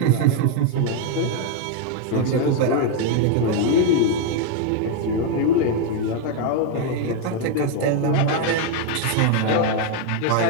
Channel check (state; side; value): different; both; correlation 0.01